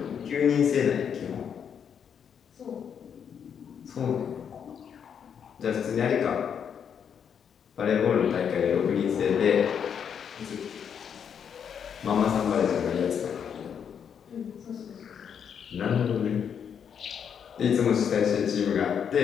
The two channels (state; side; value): quieter; right; 7.7 dB